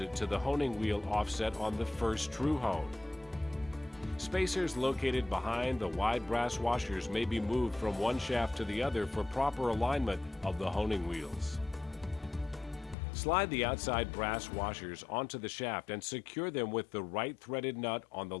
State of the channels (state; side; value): drops out; right; at 13.0 s